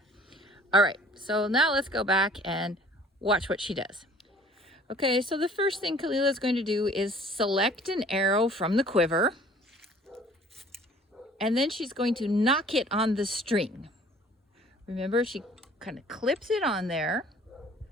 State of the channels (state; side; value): normal; both; correlation 0.52